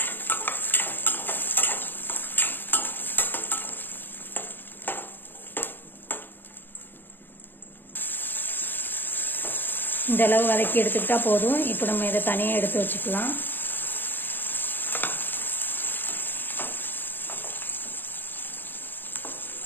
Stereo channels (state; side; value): late; right; 0.095 ms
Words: இந்த அளவு வதக்கி எடுத்துக்கிட்டா போதும். இப்போ நம்ம இதை தனியாக எடுத்து வச்சுக்கலாம்.